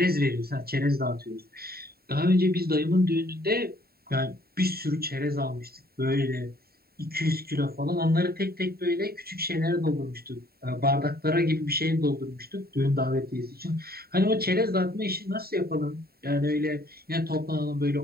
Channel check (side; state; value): left; late; 0.45 ms